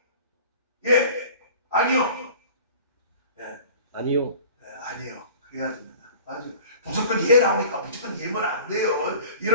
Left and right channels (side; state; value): both; inverted; correlation -0.44